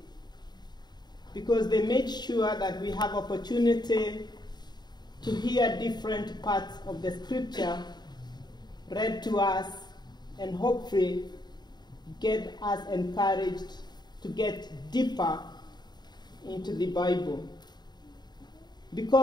because they made sure that we have opportunity to hear different parts of the scripture read to us and hopefully get us encouraged to get deeper into the Bible.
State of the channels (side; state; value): right; late; 0.20 ms